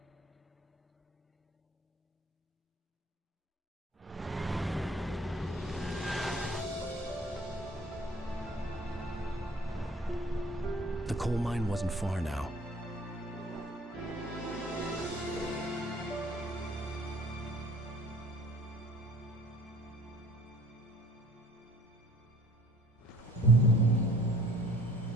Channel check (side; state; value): both; normal; correlation 0.53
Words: The coal mine wasn't far now.